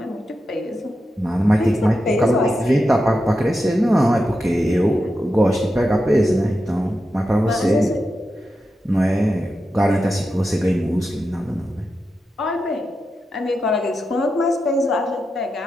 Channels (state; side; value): normal; both; correlation 0.89